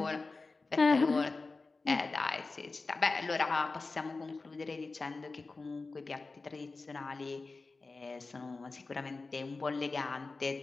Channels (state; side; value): quieter; right; 3.8 dB